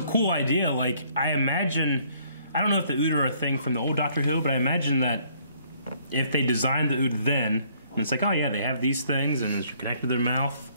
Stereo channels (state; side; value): inverted; both; correlation -0.64